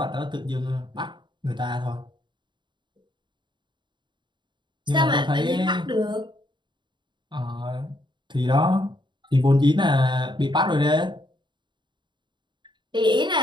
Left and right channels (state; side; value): late; left; 0.22 ms